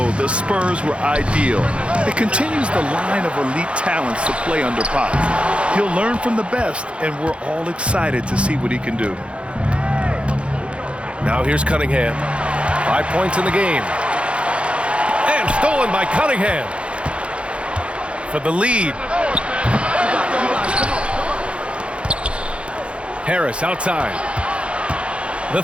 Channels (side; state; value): left; late; 0.059 ms